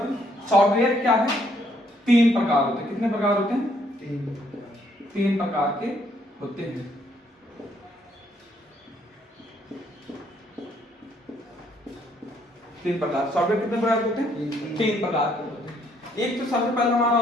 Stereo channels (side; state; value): both; normal; correlation 0.68